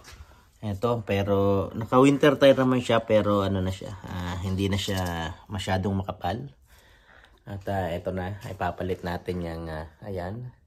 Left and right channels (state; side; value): identical; both; correlation 1.00